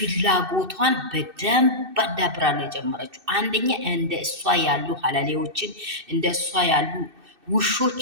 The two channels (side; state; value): left; late; 2.6 ms